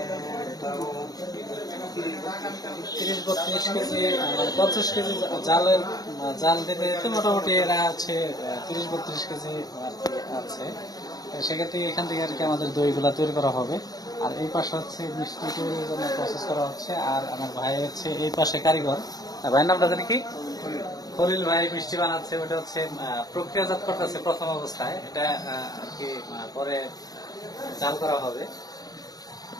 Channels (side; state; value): right; late; 0.18 ms